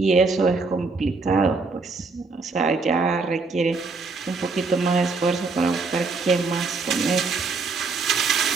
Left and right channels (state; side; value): quieter; left; 4.1 dB